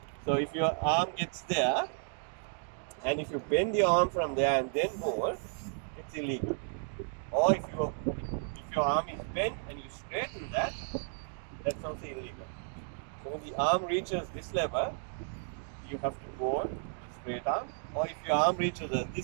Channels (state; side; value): silent; left; 56 dB below the other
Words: So if your arm gets there, and if you bend your arm from there and then bowl, it's illegal. Or if your arm is bent and you straighten that, that's also illegal. So when the arm reaches this level, you have to bowl straight arm. Or if your arm reaches